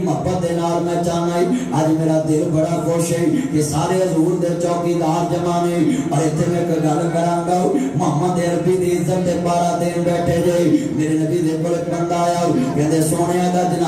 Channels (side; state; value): both; identical; correlation 1.00